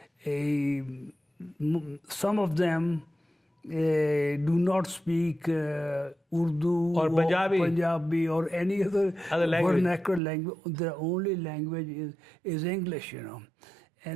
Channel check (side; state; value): left; drops out; at 10.2 s